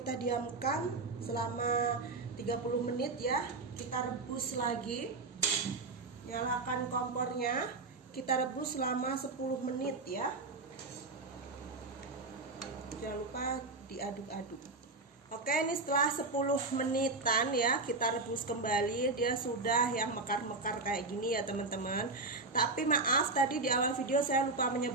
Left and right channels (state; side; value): quieter; left; 3.6 dB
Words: diamkan selama 30 menit ya, kita rebus lagi. Nyalakan kompornya, kita rebus selama 10 menit ya. Jangan lupa diaduk-aduk. Oke, ini setelah 10 menitan ya, kita rebus kembali. Dia sudah yang mekar-mekar kayak gini ya teman-teman. Tapi maaf, tadi di awal video saya lupa